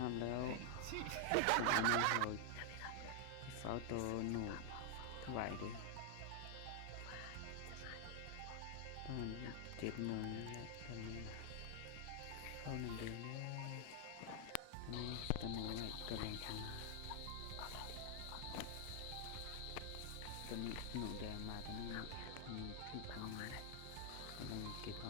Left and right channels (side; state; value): both; different; correlation 0.00